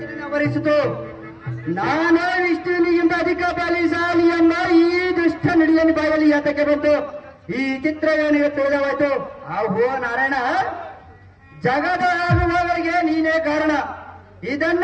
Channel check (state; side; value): identical; both; correlation 1.00